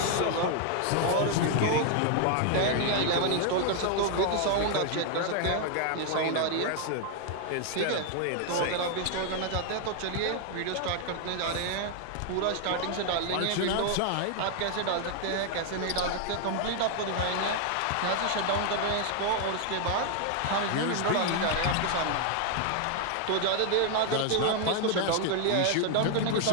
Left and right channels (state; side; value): different; both; correlation 0.00